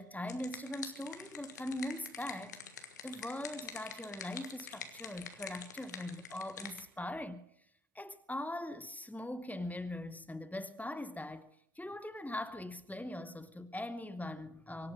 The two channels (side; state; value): both; normal; correlation 0.77